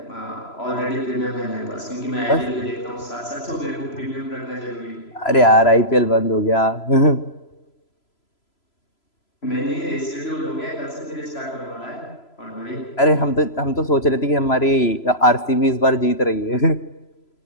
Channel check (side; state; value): right; late; 3.0 ms